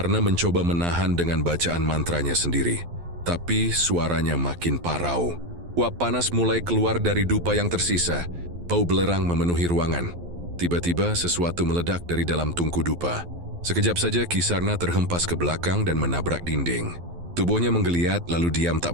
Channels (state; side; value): late; left; 12 ms